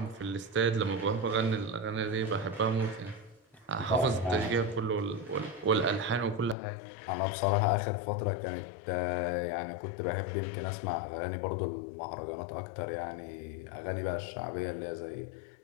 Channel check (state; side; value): drops out; right; at 6.6 s